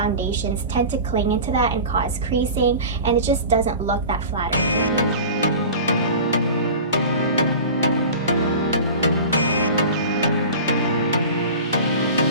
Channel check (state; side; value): inverted; both; correlation -0.35